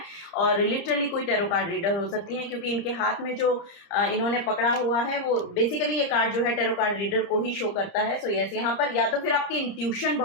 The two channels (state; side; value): late; right; 30 ms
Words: और लिटरली कोई टेरो कार्ड रीडर हो सकती है, क्योंकि इनके हाथ में जो इन्होंने पकड़ा हुआ है वो बेसिकली ये कार्ड जो है टेरो कार्ड रीडर को ही शो करता है. सो यस, यहाँ पर या तो फिर आपकी इंट्यूशन